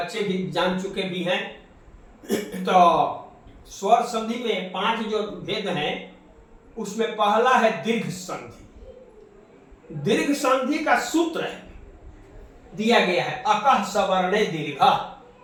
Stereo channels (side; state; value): both; identical; correlation 1.00